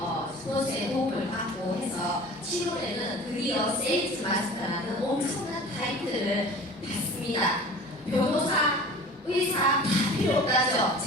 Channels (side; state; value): both; normal; correlation 0.41